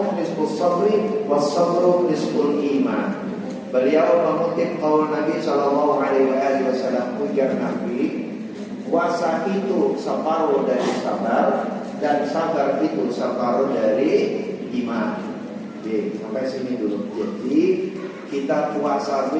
nisfus sabri was-sabru nisful iman. Beliau mengutip qaul Nabi sallallahu alaihi wasallam, ujar Nabi, puasa itu separuh dari sabar dan sabar itu separuh dari iman. Oke, sampai sini dulu. Jadi kita puasa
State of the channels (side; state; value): both; identical; correlation 1.00